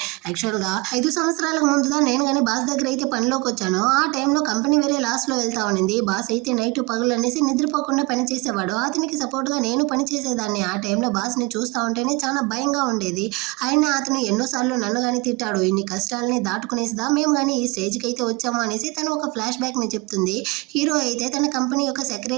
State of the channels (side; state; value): left; quieter; 25.8 dB